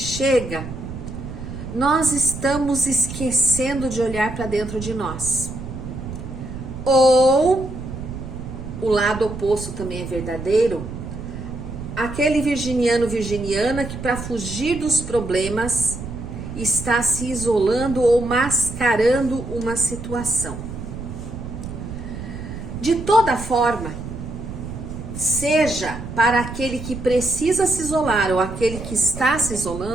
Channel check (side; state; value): right; noise; rumble, 9 dB below the sound